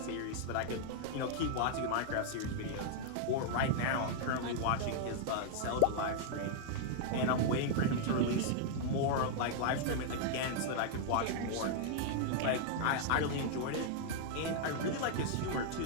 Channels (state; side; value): different; both; correlation -0.01